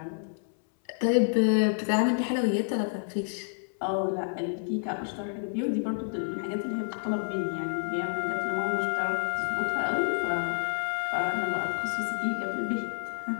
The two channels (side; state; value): right; silent; 58 dB below the other